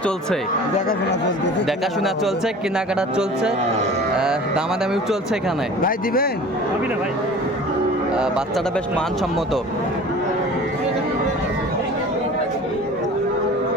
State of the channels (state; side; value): normal; both; correlation 0.42